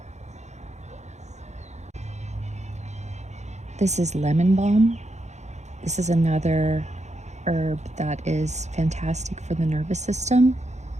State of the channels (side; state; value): left; late; 0.33 ms